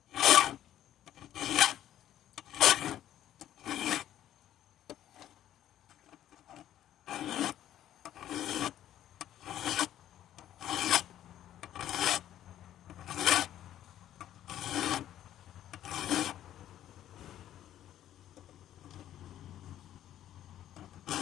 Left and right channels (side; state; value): right; quieter; 11.9 dB